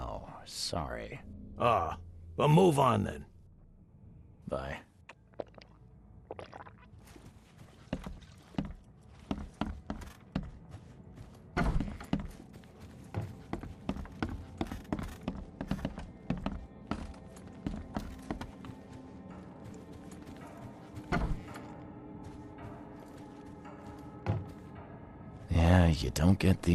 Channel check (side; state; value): both; identical; correlation 1.00